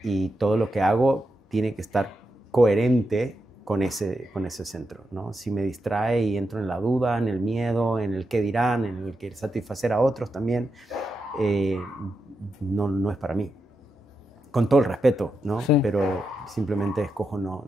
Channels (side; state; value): both; normal; correlation 0.86